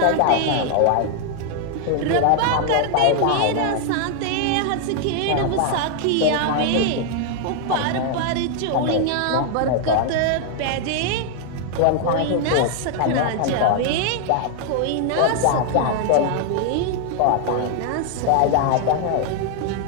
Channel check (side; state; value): both; different; correlation 0.00